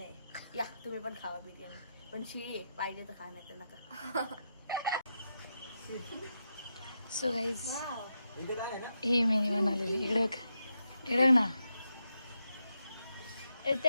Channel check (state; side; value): inverted; both; correlation -0.85